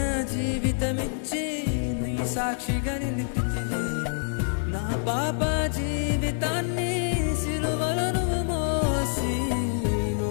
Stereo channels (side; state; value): right; silent; digital silence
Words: జీవితమిచ్చి నీ సాక్షిగా నిలిపితివి. నా పాప జీవితాన్ని సిలువలను మోసి